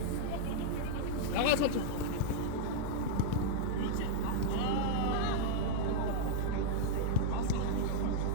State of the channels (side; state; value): both; different; correlation -0.01